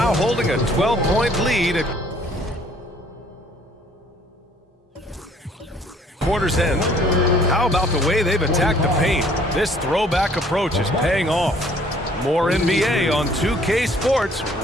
holding a 12-point lead at quarter's end. How about the way they've attacked the paint? This throwback approach is paying off. More NBA on 2K Sports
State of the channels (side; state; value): both; normal; correlation 0.59